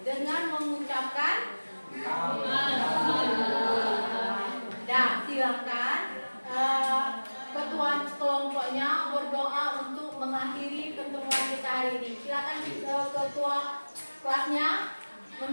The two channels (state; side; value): inverted; both; correlation -1.00